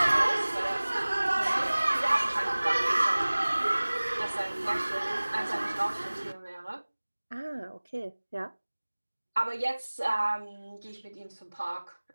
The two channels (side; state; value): both; inverted; correlation -1.00